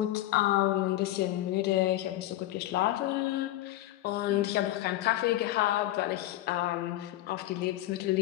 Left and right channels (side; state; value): right; quieter; 15.3 dB